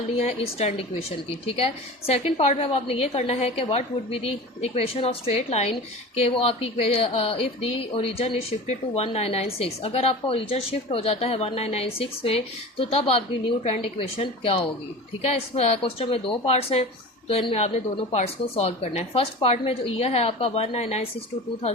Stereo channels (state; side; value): normal; both; correlation 0.34